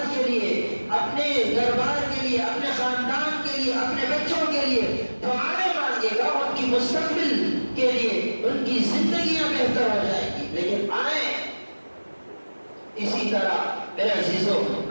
کے لیے، اپنے دربار کے لیے، اپنے خاندان کے لیے، اپنے بچوں کے لیے دعائیں مانگے گا، ان کی مستقبل کے لیے، ان کی زندگیاں بہتر ہو جائیں گی۔ لیکن آئیں اسی طرح میرے عزیزو،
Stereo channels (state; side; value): inverted; both; correlation -1.00